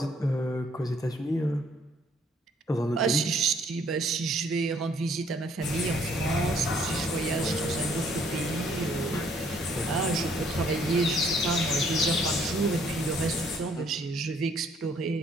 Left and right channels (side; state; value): both; normal; correlation 0.64